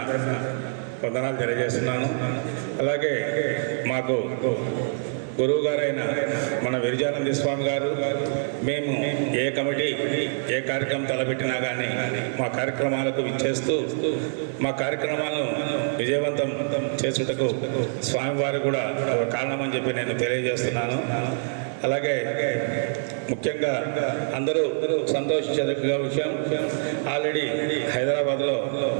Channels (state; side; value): silent; left; 61 dB below the other